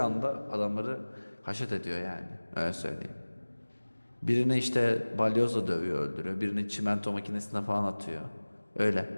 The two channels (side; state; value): both; inverted; correlation -1.00